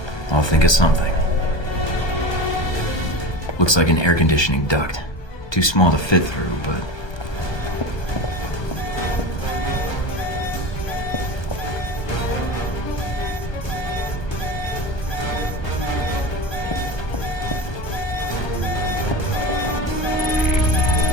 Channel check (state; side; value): late; right; 1.2 ms